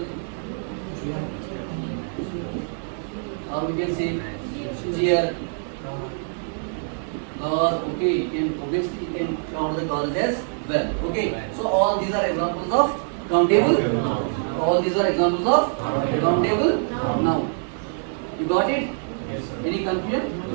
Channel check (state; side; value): silent; left; 62 dB below the other